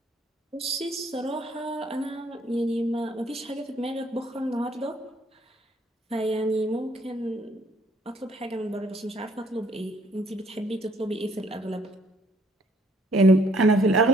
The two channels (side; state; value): both; normal; correlation 0.64